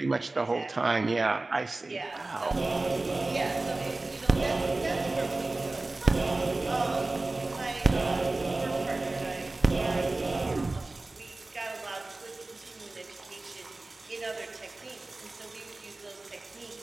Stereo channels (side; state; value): left; quieter; 3.1 dB